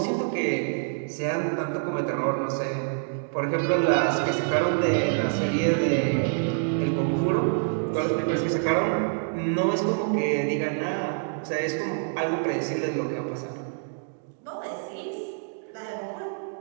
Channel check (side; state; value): left; silent; digital silence